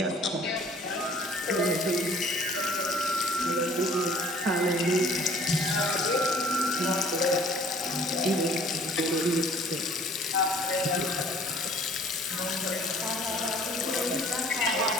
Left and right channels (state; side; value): normal; both; correlation 0.53